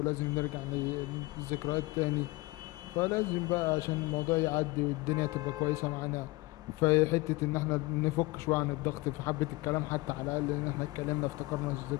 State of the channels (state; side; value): quieter; right; 22.5 dB